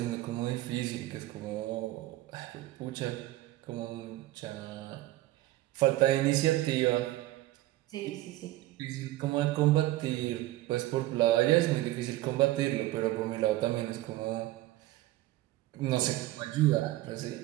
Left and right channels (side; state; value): left; quieter; 16.7 dB